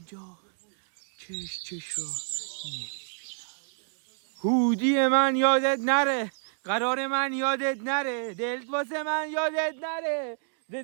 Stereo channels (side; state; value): left; silent; 59 dB below the other